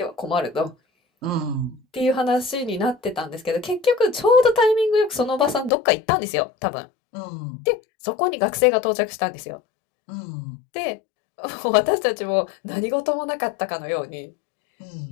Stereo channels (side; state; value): right; drops out; at 5.7 s